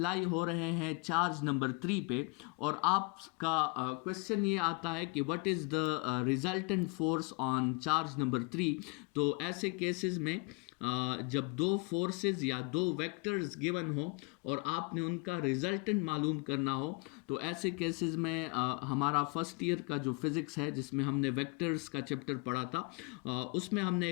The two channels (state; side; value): quieter; right; 31.2 dB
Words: हो रहे हैं चार्ज नंबर 3 पे और आपका क्वेश्चन ये आता है कि what is the resultant force on charge number 3, तो ऐसे केसेस में जब दो फोर्सेस या दो वेक्टर्स गिवन हो और आपने उनका रिजल्टेंट मालूम करना हो, तो ऐसे केसेस में हमारा फर्स्ट ईयर का जो फिज़िक्स है जिसमें हमने वेक्टर्स का चैप्टर पढ़ा था उसमें हमने